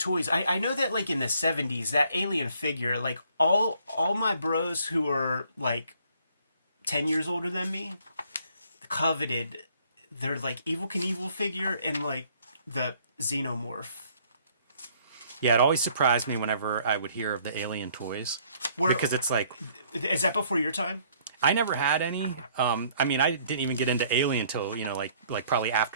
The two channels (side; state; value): both; inverted; correlation -0.62